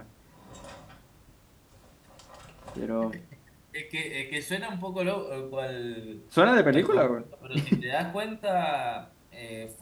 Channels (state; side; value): identical; both; correlation 1.00